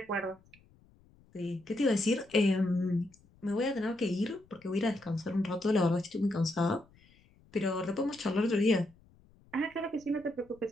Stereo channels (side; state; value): left; noise; rumble, 29 dB below the sound